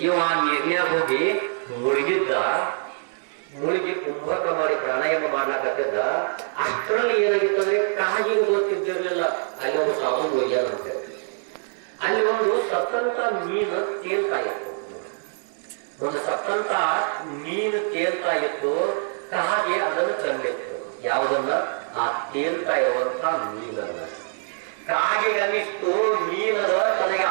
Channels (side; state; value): left; silent; 58 dB below the other